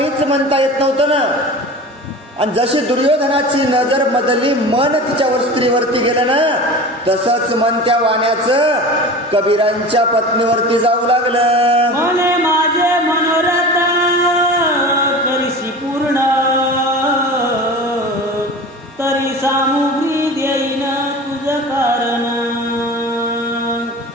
म्हणता येत नव्हतं ना. आणि जशी दुर्योधनाची नजर बदलली, मन तिच्या स्त्रीवरती गेलं ना, तसंच मन त्या वाण्याचं कबीरांच्या पत्नीवरती जाऊ लागलं. मने माझे मनोरथ करीशी पूर्ण तरी सामुग्री देईन तुझ कारण.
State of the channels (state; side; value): normal; both; correlation 0.35